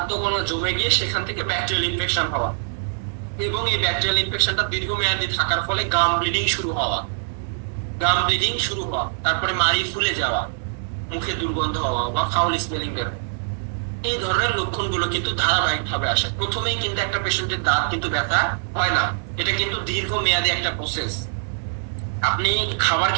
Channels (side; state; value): left; silent; 63 dB below the other